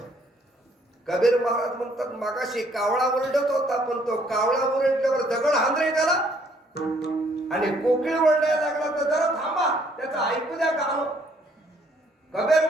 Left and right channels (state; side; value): normal; both; correlation 0.65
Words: कबीर महाराज म्हणतात, मागाशी कावळा ओरडत होता, पण तो कावळा ओरडल्यावर दगड हांदरे त्याला, आणि कोकिळ ओरडायला लागला तर जरा थांबा, त्याचं ऐकू द्या गाणं. कबीर